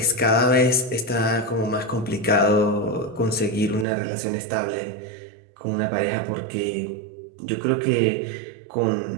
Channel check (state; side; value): drops out; left; at 3.9 s